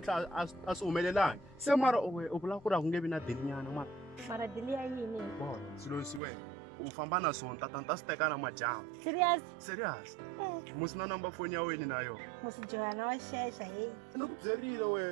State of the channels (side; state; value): left; drops out; at 6.2 s